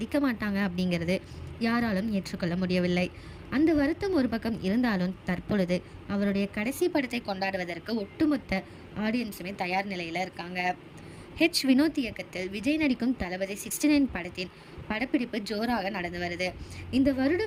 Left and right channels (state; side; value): identical; both; correlation 1.00